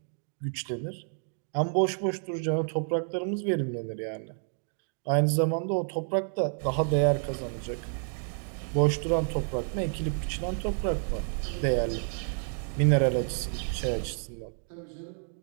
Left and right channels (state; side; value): silent; left; 58 dB below the other